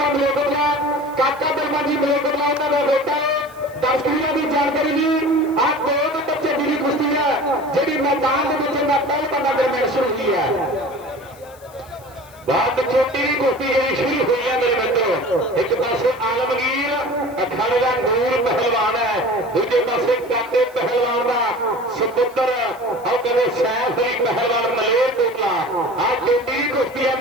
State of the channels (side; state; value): left; noise; hiss, 25 dB below the sound